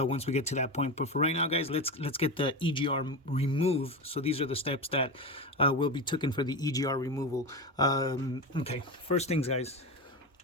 we get to that point. But for right now, guys, let's get the EGR removed. So these are the steps that will be taken for the EGR removal. Okay, first things, guys,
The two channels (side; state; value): both; normal; correlation 0.20